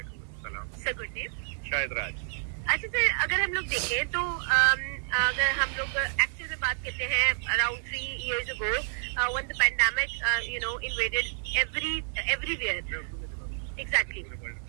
अस्सलाम। Sir good name? शायद राज। अच्छा सर, अगर हम लोग देखें तो अगर हम लोग एक्चुअल में बात करते हैं around 3 years ago when the pandemic invaded everywhere, exactly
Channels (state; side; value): silent; left; digital silence